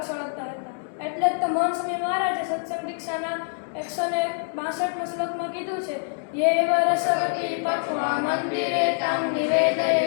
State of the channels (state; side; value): silent; right; digital silence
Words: સળગતા હતા. એટલે જ તો મહંત સ્વામી મહારાજે સત્સંગ દીક્ષાના 162માં શ્લોકમાં કીધું છે, યેવ રસવતી પક્વા મંદિરે તામ નિવેદયે